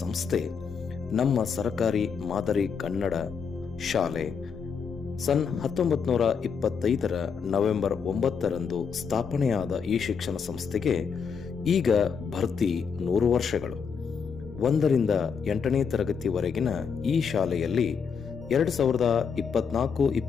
ಸಂಸ್ಥೆ ನಮ್ಮ ಸರ್ಕಾರಿ ಮಾದರಿ ಕನ್ನಡ ಶಾಲೆ. ಸನ್ 1925 ನವೆಂಬರ್ 9 ಸ್ಥಾಪನೆಯಾದ ಈ ಶಿಕ್ಷಣ ಸಂಸ್ಥೆಗೆ ಈಗ ಭರ್ತಿ 100 ವರ್ಷಗಳು. 1ರಿಂದ 8ನೇ ತರಗತಿವರೆಗಿನ ಈ ಶಾಲೆಯಲ್ಲಿ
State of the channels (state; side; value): quieter; right; 6.3 dB